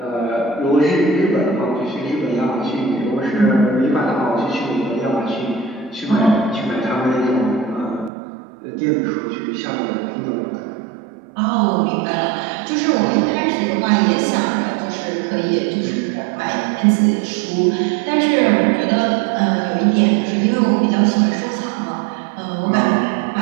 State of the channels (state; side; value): drops out; left; at 8.1 s